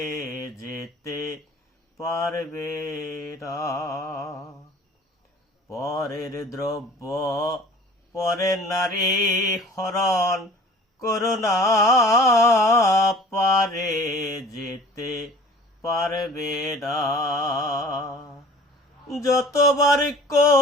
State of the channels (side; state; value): both; normal; correlation 0.46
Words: যেতে পারবে না। পরের দ্রব্য পরের নারী হরণ করুণা পারে যেতে পারবে না। যতবার